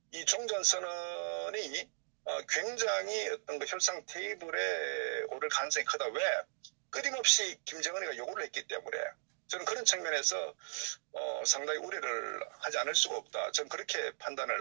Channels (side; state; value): left; silent; digital silence